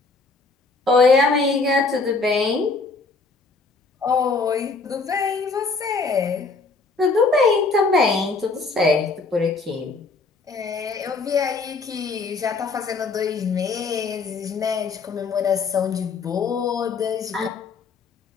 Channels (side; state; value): right; quieter; 4.1 dB